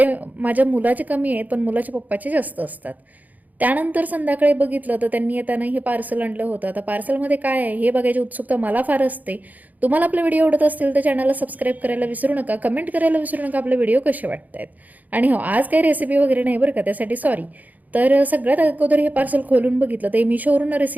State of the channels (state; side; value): late; left; 0.080 ms